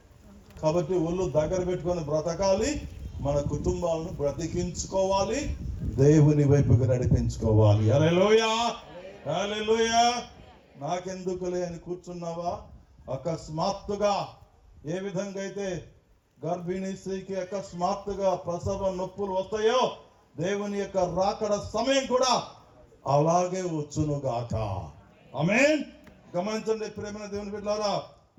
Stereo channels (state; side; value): identical; both; correlation 1.00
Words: కాబట్టి ఒళ్ళు దగ్గర పెట్టుకొని బ్రతకాలి. మన కుటుంబాలను బ్రతికించుకోవాలి, దేవుని వైపుకి నడిపించుకోవాలి. హల్లెలూయా. నాకెందుకులే అని కూర్చున్నావా? అకస్మాత్తుగా ఏ విధంగా అయితే గర్భిణీ స్త్రీకి అకస్మాత్తుగా ప్రసవ నొప్పులు వస్తాయో, దేవుని యొక్క రాకడ సమయం కూడా అలాగే వచ్చునుగాక. ఆమేన్. గమనించండి ప్రేమ దేవుని బిడ్డలారా,